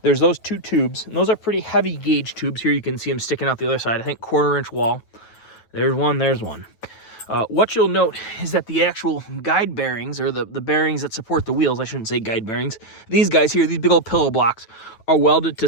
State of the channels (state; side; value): late; right; 9.1 ms